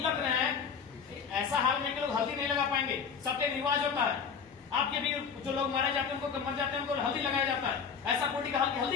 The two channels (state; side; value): quieter; right; 6.4 dB